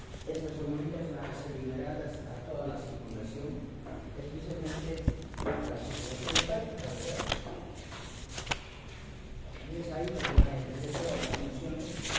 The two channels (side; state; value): both; identical; correlation 1.00